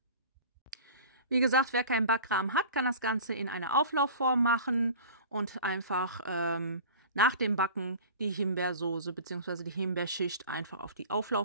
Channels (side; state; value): both; inverted; correlation -0.39